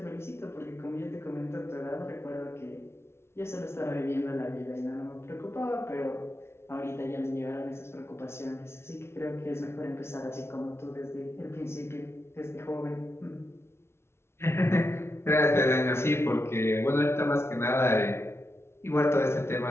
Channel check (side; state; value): right; late; 0.12 ms